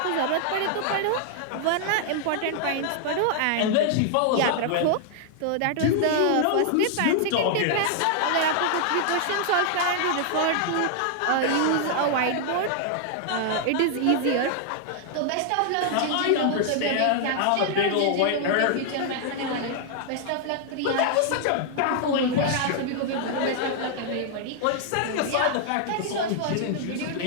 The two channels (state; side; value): different; both; correlation 0.00